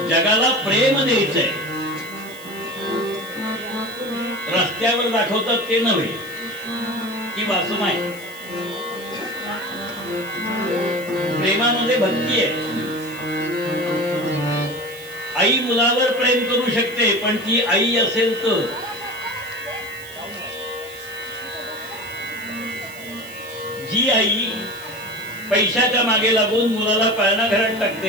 जगाला प्रेम द्यायचंय. रस्त्यावर दाखवतात ते नव्हे, ती वासना आहे. प्रेमामध्ये भक्ती आहे. आई मुलावर प्रेम करू शकते, पण ती आई असेल तर. जी आई पैशाच्या मागे लागून मुलाला पाळणा घरात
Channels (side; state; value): right; noise; hiss, 18 dB below the sound